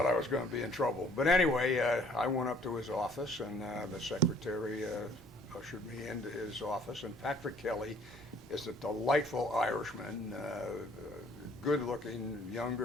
I was going to be in trouble. But anyway, I went up to his office, and the secretary ushered me into his office. And Patrick Kelly is a delightful Irishman, good-looking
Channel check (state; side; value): normal; both; correlation 0.58